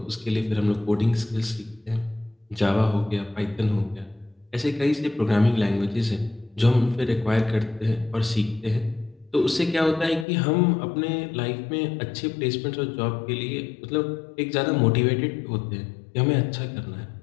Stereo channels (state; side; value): drops out; right; at 10.2 s